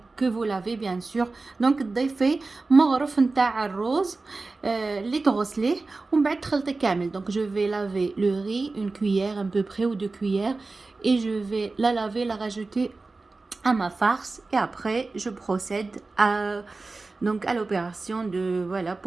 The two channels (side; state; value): left; quieter; 3.6 dB